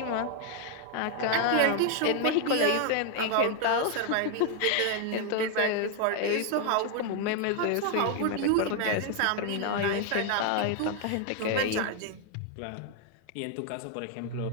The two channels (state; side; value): different; both; correlation 0.01